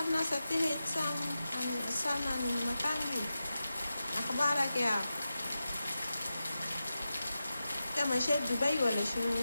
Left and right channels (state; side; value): inverted; both; correlation -0.91